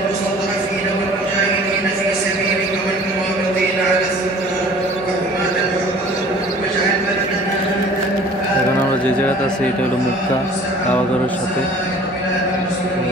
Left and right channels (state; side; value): normal; both; correlation 0.48